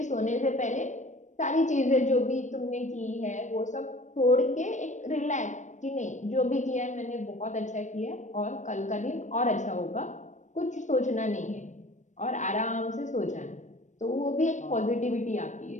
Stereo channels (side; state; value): right; late; 0.35 ms